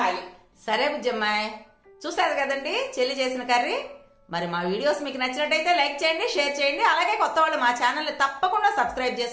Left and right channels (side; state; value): both; identical; correlation 1.00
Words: సరే బుజ్జమ్మాయి, చూసారు కదండి చెల్లి చేసిన కర్రీ. మరి మా వీడియోస్ మీకు నచ్చినట్టయితే లైక్ చేయండి, షేర్ చేయండి. అలాగే కొత్త వాళ్ళు మా ఛానల్ ని తప్పకుండా సబ్స్క్రైబ్